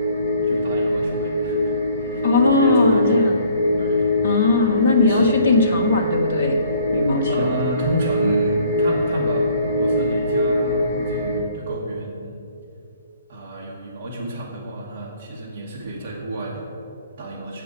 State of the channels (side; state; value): both; inverted; correlation -0.59